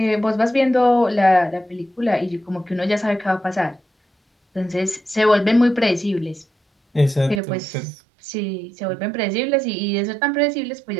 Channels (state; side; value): drops out; left; at 7.4 s